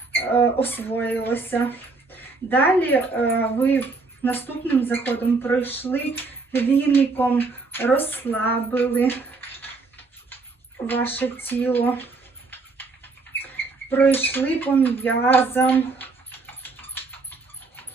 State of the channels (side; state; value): left; quieter; 3.9 dB